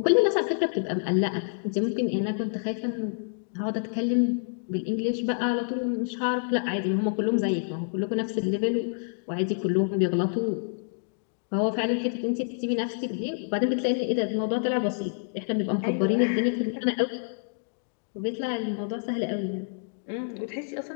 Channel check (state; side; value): silent; right; digital silence